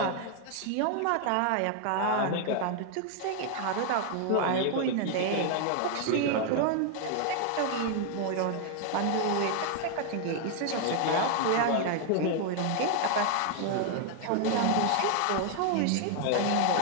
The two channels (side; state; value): both; different; correlation 0.00